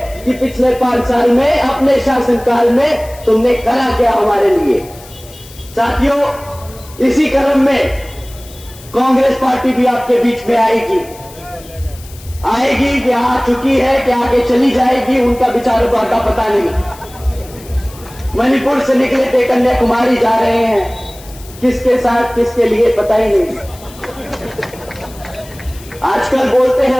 कि पिछले 5 साल में अपने शासनकाल में तुमने करा क्या हमारे लिए। साथियों, इसी क्रम में कांग्रेस पार्टी भी आपके बीच में आएगी कि आ चुकी है, कि आगे चली जाएगी, उनका विचारों का पता नहीं। मणिपुर से निकले थे, कन्याकुमारी जा रहे हैं, किसके साथ किसके लिए पता ही नहीं। आजकल बोलते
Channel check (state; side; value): noise; left; hiss, 20 dB below the sound